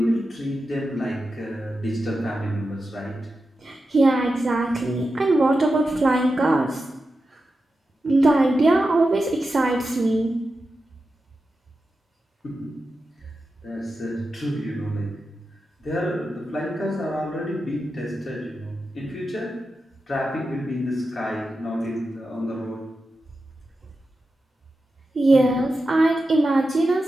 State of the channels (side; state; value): both; normal; correlation 0.91